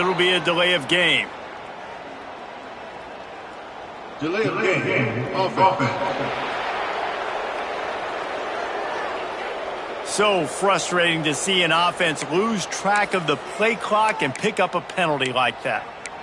be a delay of game. Delay of game. Offense. So frustrating to see an offense lose track of the play clock and pick up a penalty like that.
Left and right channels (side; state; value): both; identical; correlation 1.00